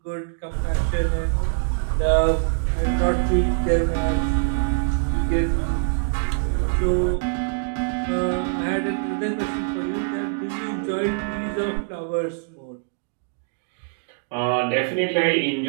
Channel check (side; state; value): left; silent; digital silence